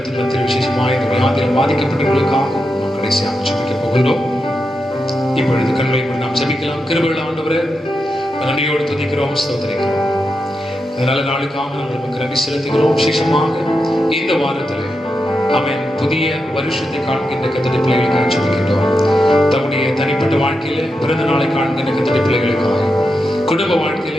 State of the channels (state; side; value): normal; both; correlation 0.87